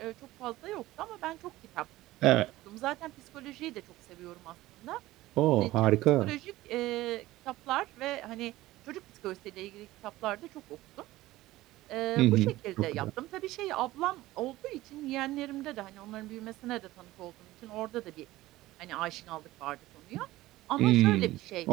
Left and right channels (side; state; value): left; quieter; 17.1 dB